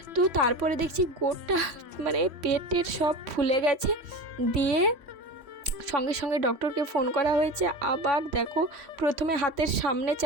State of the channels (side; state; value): left; late; 3.1 ms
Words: তো তারপরে দেখছি গোটা মানে পেটের সব ফুলে গেছে। দিয়ে সঙ্গে সঙ্গে ডক্টরকে ফোন করা হয়েছে। আবার দেখো, প্রথমে হাতের সামনে